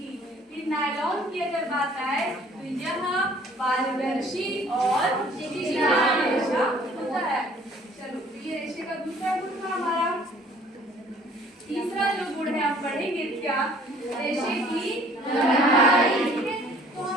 फिर नायलॉन की अगर बात आए तो यह पारदर्शी और चिकना रेशा होता है। चलो, ये रेशे का दूसरा गुण था हमारा। तीसरा जो गुण है पढ़ेंगे क्या? रेशे की लंबाई। ठीक है, तो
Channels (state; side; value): normal; both; correlation 0.55